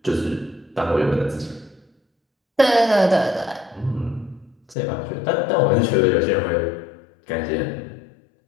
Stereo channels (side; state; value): right; drops out; at 4.8 s